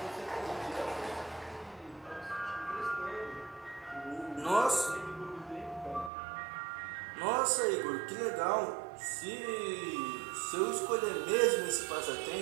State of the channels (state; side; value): drops out; left; at 6.1 s